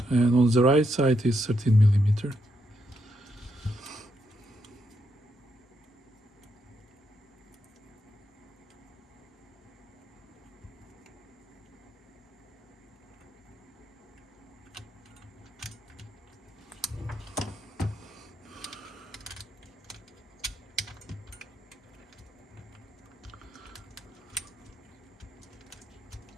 And on the right side is 13 millimeter.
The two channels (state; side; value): normal; both; correlation 0.80